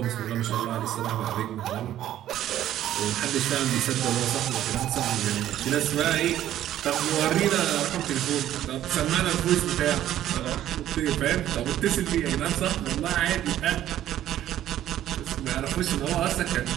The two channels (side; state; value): left; quieter; 12.3 dB